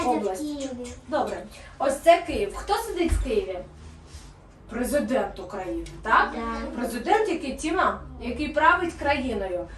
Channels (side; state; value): both; identical; correlation 1.00